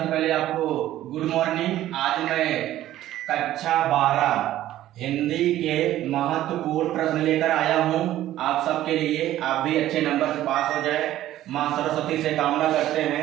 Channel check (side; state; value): left; quieter; 13.7 dB